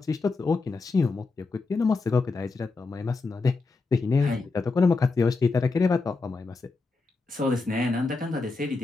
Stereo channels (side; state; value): right; quieter; 3.9 dB